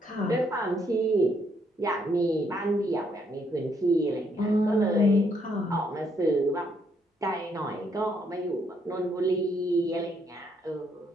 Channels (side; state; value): both; normal; correlation 0.72